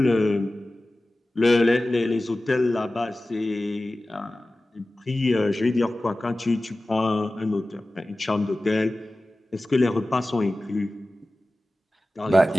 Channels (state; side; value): normal; both; correlation 0.96